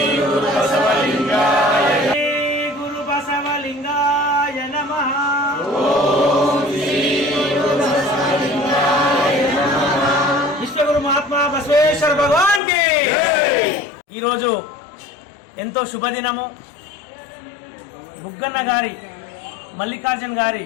గురు బసవలింగాయ గురు బసవలింగాయ నమః. విశ్వగురు మహాత్మా బసవేశ్వర భగవాన్ కి. ఈరోజు ఎంతో శుభదినము. బుగ్గన్న గారి మల్లికార్జున్ గారి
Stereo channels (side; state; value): right; drops out; at 12.6 s